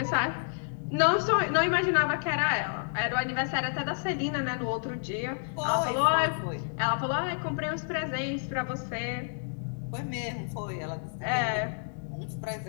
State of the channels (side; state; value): right; silent; digital silence